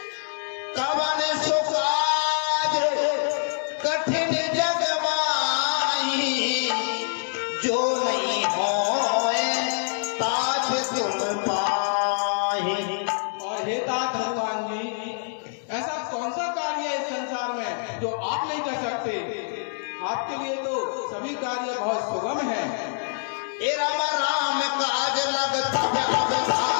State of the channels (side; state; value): right; silent; 61 dB below the other